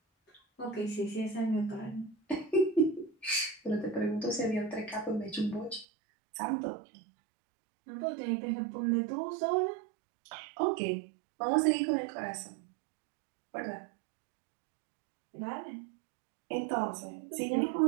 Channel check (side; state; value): left; drops out; at 5.9 s